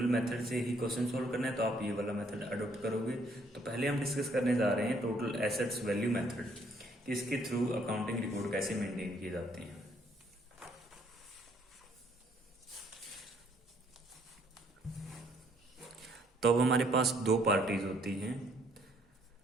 मेथड से ही क्वेश्चन सोल्व करना है तो आप ये वाला मेथड अडॉप्ट करोगे। तो पहले हम डिस्कस करने जा रहे हैं टोटल एसेट्स वैल्यू मेथड, कि इसके थ्रू अकाउंटिंग रिकॉर्ड कैसे मेंटेन किए जाते हैं। तो अब हमारे पास दो पार्टीज होती हैं,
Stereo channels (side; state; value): both; normal; correlation 0.66